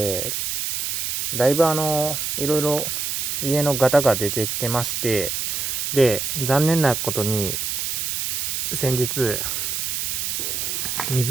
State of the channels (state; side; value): noise; right; hiss, 1 dB below the sound